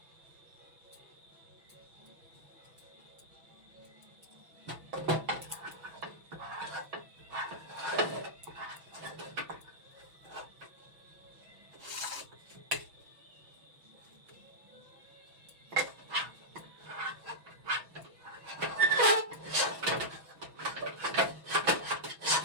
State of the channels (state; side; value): late; left; 6.1 ms